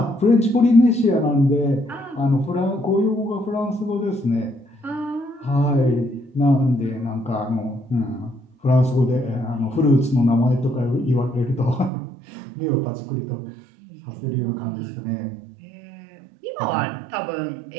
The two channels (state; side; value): drops out; left; at 11.9 s